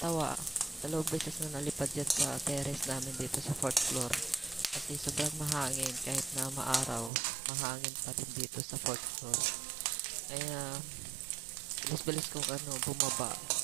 2 beses na nalipad yan sa terrace namin dito sa 4th floor. Kasi sobrang mahangin kahit na maaraw, mahangin pa din dito sa 4th floor. Kaya bilis-bilis kong bumaba.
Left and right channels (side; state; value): left; drops out; at 7.1 s